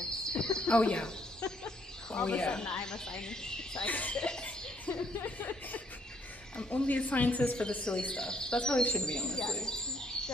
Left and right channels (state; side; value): normal; both; correlation 0.69